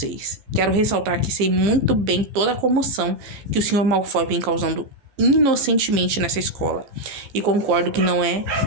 Quero ressaltar que sei muito bem toda a comoção que o Sr. Malfoy vem causando inocentemente nessa escola. E concordo que não é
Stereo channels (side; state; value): left; late; 15 ms